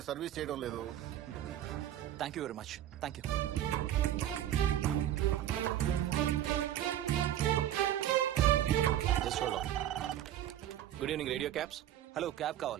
సర్వీస్ చేయడం లేదు. Thank you very much. Thank you. Good evening radio cabs. Hello, cab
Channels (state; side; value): quieter; left; 11.9 dB